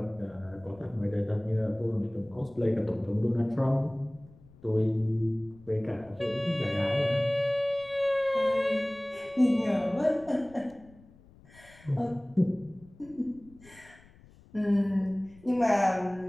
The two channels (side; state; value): left; noise; rumble, 25 dB below the sound